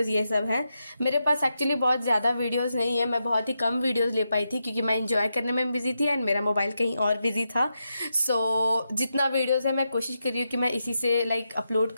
ये सब हैं। मेरे पास एक्चुअली बहुत ज़्यादा वीडियोस नहीं है, मैं बहुत ही कम वीडियोस ले पाई थी क्योंकि मैं इंजॉय करने में बिजी थी एंड मेरा मोबाइल कहीं और बिजी था। सो जितना वीडियोस है मैं कोशिश कर रही हूँ कि मैं इसी से अपलोड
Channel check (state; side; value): inverted; both; correlation -0.86